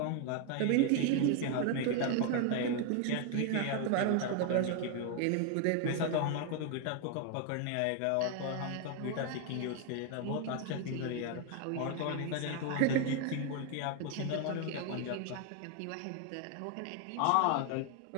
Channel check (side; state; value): both; different; correlation 0.01